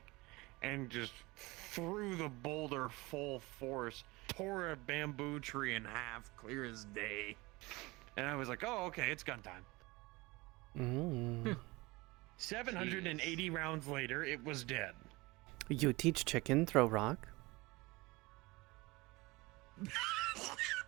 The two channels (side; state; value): left; quieter; 22.7 dB